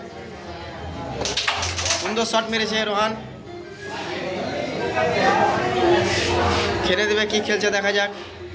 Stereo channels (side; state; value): both; identical; correlation 1.00